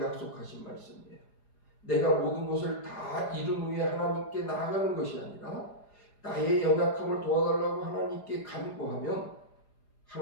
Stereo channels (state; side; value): late; right; 4.9 ms